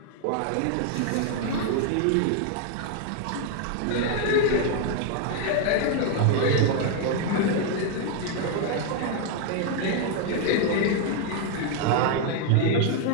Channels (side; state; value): both; different; correlation 0.00